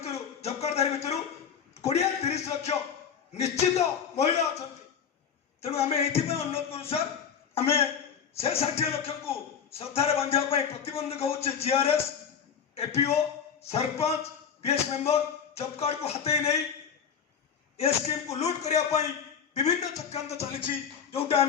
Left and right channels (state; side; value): quieter; right; 7.4 dB